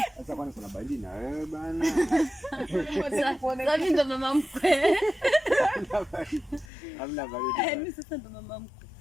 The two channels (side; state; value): right; drops out; at 6.7 s